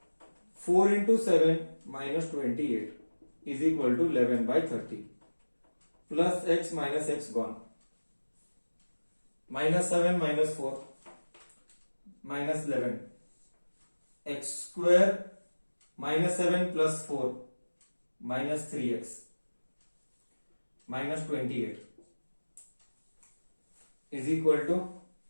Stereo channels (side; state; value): both; inverted; correlation -1.00